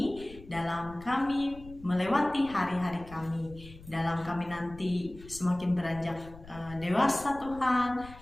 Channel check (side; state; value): left; noise; rumble, 18 dB below the sound